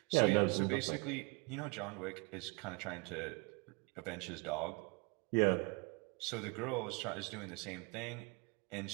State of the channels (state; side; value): quieter; left; 30.6 dB